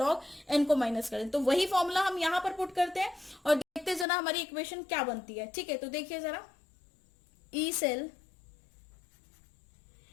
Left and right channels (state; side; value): drops out; right; at 4.0 s